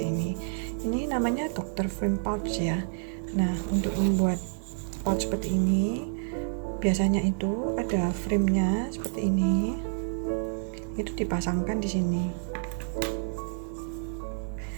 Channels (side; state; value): left; silent; 59 dB below the other